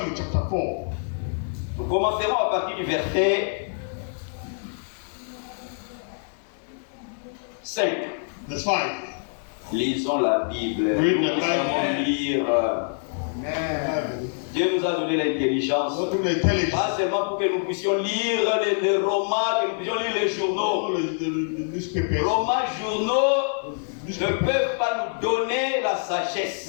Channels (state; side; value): silent; right; digital silence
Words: chapter 4. Nous commencerons à partir du verset 5. Verse 5. Lisons la Bible. Read Nous the Bible. savons lire. Dieu nous a donné l'intelligence. Not only intelligence, Pas seulement pour que nous puissions lire les romans, que nous puissions lire les journaux. all the newspapers. Romans, journaux ne peuvent pas nous donner la sagesse.